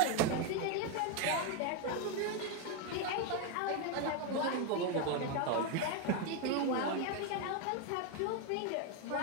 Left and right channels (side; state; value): both; different; correlation 0.02